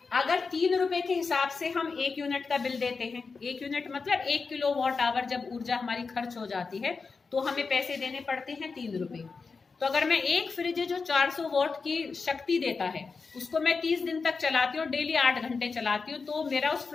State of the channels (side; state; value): right; quieter; 4.7 dB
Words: अगर 3 रुपए के हिसाब से हम 1 यूनिट का बिल देते हैं, 1 यूनिट मतलब 1 किलोवाट आवर जब ऊर्जा हमारी खर्च हो जाती है तो हमें पैसे देने पड़ते हैं 3 रुपए। तो अगर मैं एक फ्रिज जो 400 वॉट की शक्ति देता है उसको मैं 30 दिन तक चलाती हूँ, डेली 8 घंटे चलाती हूँ, तो मेरा उस